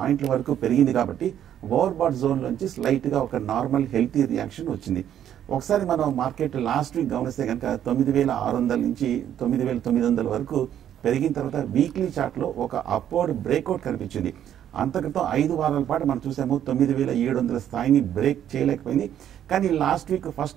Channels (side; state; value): left; quieter; 10.4 dB